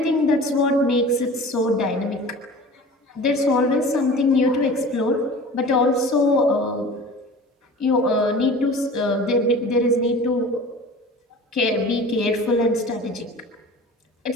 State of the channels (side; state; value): both; normal; correlation 0.40